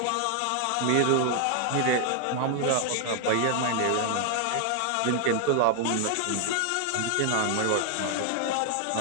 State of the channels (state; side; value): different; both; correlation 0.00